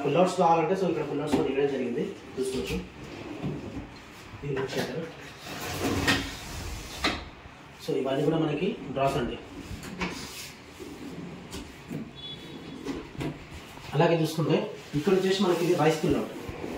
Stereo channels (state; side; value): identical; both; correlation 1.00